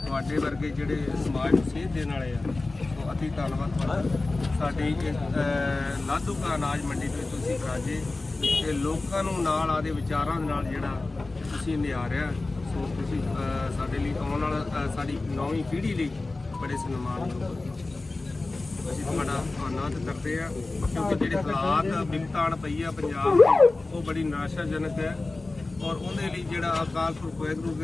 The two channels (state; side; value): quieter; right; 3.3 dB